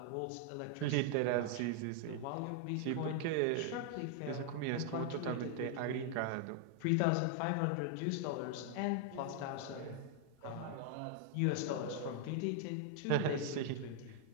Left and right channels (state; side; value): different; both; correlation 0.00